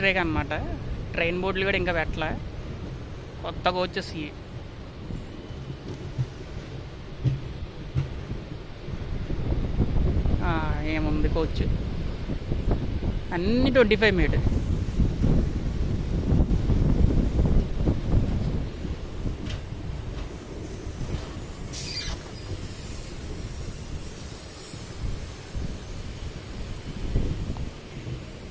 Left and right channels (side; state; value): both; identical; correlation 1.00